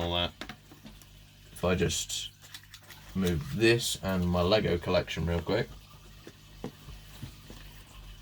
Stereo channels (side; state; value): both; identical; correlation 1.00